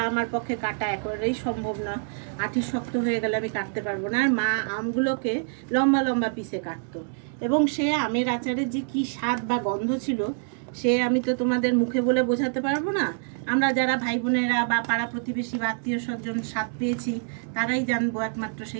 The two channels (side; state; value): left; silent; digital silence